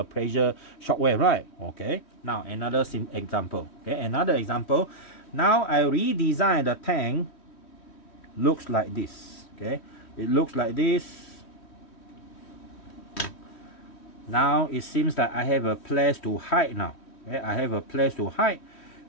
pressure shock wave, right? Okay, now another example, okay, another example. Now I redesign the tank, looks like this, okay, it looks like this. Now it seems that I have a place to hide now, okay, I have a place to hide,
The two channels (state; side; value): late; right; 3.1 ms